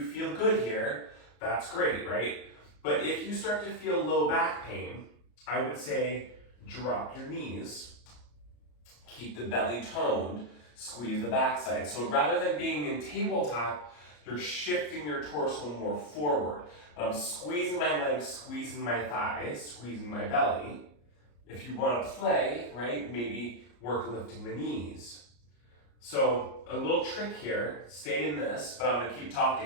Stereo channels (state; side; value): late; right; 34 ms